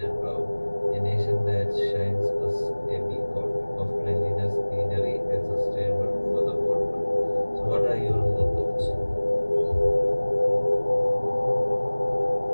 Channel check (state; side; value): inverted; both; correlation -1.00